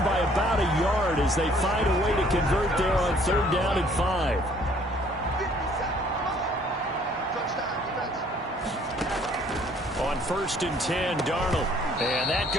by about a yard as they find a way to convert there on 3rd down and 5. On 1st and 10, Darnold. And that's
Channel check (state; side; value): normal; both; correlation 0.60